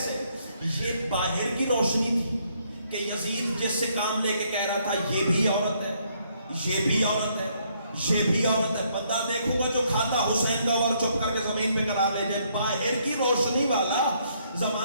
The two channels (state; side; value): inverted; both; correlation -0.70